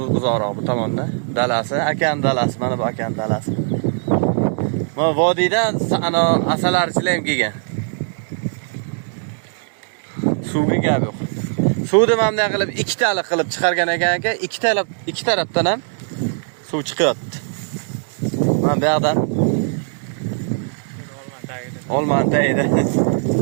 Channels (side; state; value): left; silent; digital silence